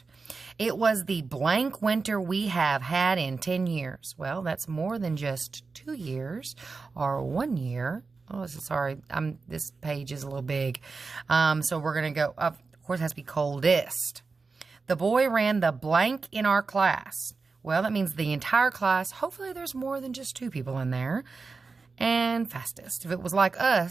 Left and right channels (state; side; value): quieter; left; 4.3 dB